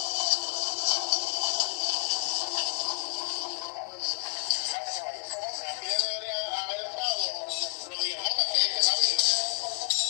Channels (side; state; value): right; silent; digital silence